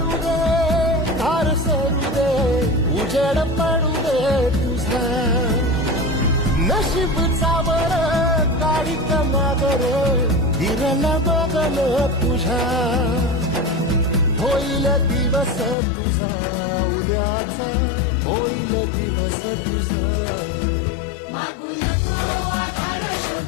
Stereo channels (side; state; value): right; drops out; at 15.8 s